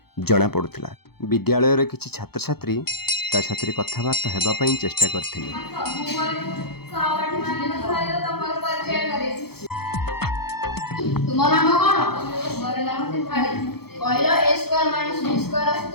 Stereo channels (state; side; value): late; right; 0.96 ms